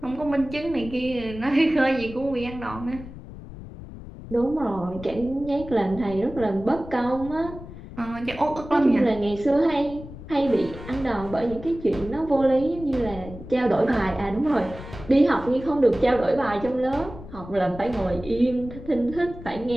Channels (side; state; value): left; noise; rumble, 14 dB below the sound